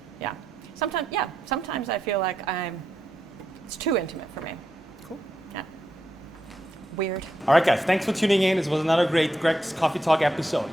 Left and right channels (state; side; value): normal; both; correlation 0.83